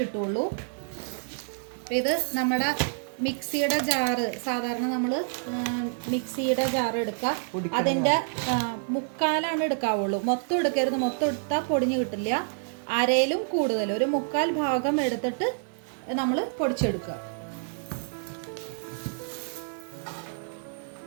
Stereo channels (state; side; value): silent; left; digital silence